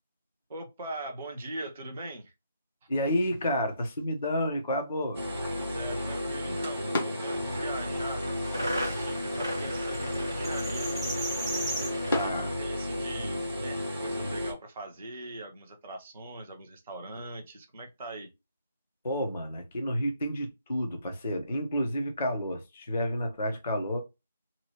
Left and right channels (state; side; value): inverted; both; correlation -0.75